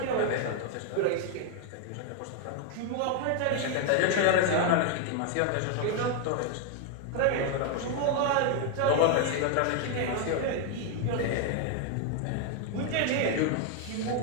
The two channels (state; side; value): different; both; correlation 0.00